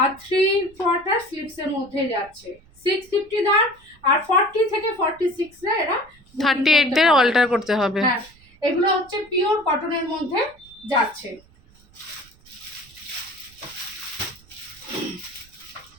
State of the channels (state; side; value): noise; right; rumble, 28 dB below the sound